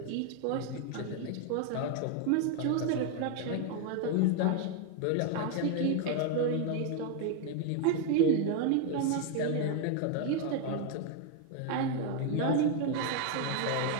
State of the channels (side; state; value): both; different; correlation 0.01